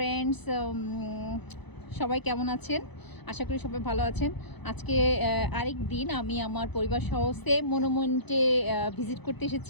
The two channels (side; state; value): right; late; 0.99 ms